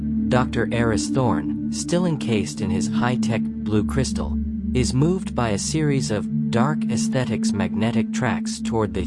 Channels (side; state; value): both; identical; correlation 1.00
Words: Dr. Eris Thorne, still encased in his high-tech blue crystal, is moved by a series of dark aesthetics magnetic tracks toward the